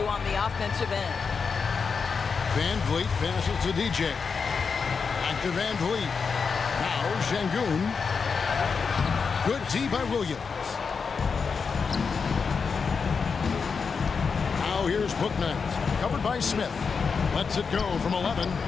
on the offensive end. Van Vliet passes to DJ. Back to Van Vliet. Now Şengün. Good D by Williams. Now here's Bouknight. Covered by Smith. Lets it go from 11.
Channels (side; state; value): right; quieter; 5.5 dB